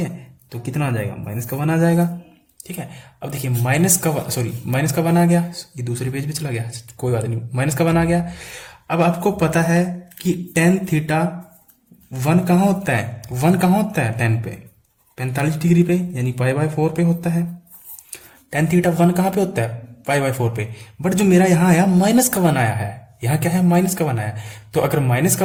तो कितना आ जाएगा माइनस का 1 आ जाएगा, ठीक है। अब देखिए माइनस का 1 आ गया, ये दूसरे पेज पे चला गया, कोई बात नहीं, माइनस का 1 आ गया। अब आपको पता है कि टेन थीटा 1 कहाँ होता है, 1 कहाँ होता है टेन पे, 45 डिग्री पे, यानी π/4 पे होता है। टेन थीटा 1 कहाँ पे होता है π/4 पे, बट जो मेरा यहाँ आया माइनस का 1 आया है, यहाँ क्या है माइनस का 1 आया, तो अगर माइनस का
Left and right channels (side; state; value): both; identical; correlation 1.00